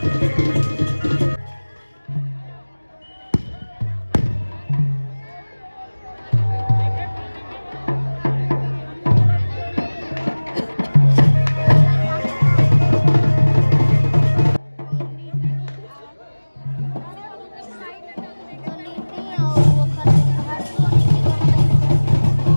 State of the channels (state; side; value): inverted; both; correlation -1.00